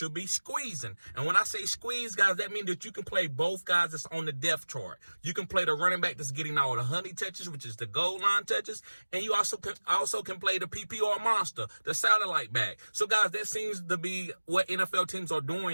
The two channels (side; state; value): both; inverted; correlation -1.00